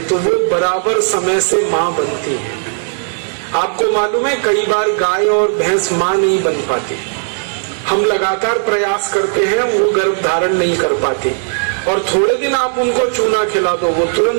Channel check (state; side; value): silent; left; digital silence